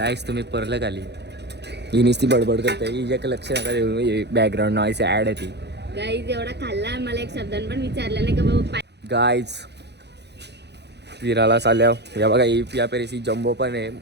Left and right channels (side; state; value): left; late; 0.49 ms